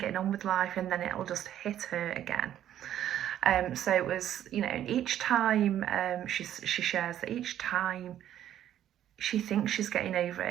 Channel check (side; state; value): left; quieter; 11.3 dB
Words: on with life, and then it'll just hit her again. So it was, and each time she shares that each time she thinks she's getting over